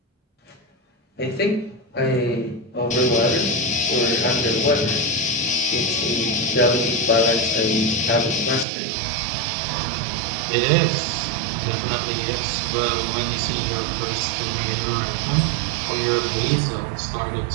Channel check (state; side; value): drops out; left; at 8.7 s